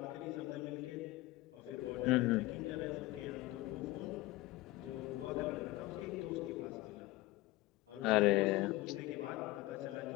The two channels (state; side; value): quieter; right; 19.2 dB